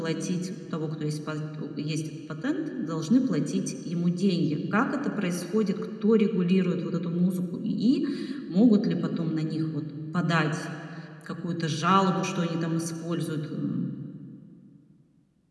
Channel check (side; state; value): both; identical; correlation 1.00